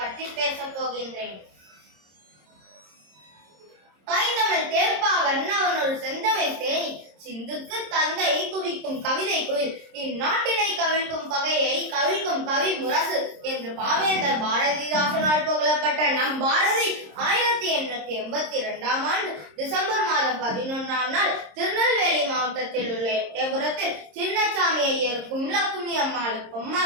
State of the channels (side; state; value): left; late; 26 ms